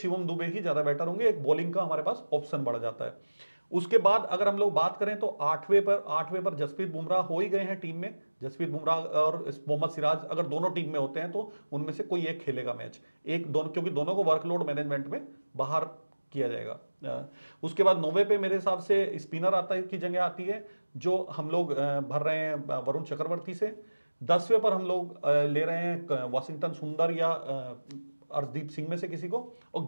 दुबे ही ज्यादा बेटर होंगे, एक बॉलिंग का हमारे पास ऑप्शन बढ़ जाता है। उसके बाद अगर हम लोग बात करें तो 8वें पर जसप्रीत बुमराह हो ही गए हैं टीम में। जसप्रीत बुमराह और मोहम्मद सिराज अगर दोनों टीम में होते हैं तो उनमें से कोई एक खेलेगा मैच, एक दोनों, क्योंकि दोनों को वर्कलोड मैनेजमेंट में बाहर किया जाएगा। उसके बाद 9वें पे मेरे हिसाब से स्पिनर आता है की जगह आती है, जो हम लोग भर रहे हैं वरुण चक्रवर्ती से। 10वें पर हम लोग ले रहे हैं वाशिंगटन सुंदर या अर्शदीप सिंह में से किसी को। और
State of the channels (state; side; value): inverted; both; correlation -1.00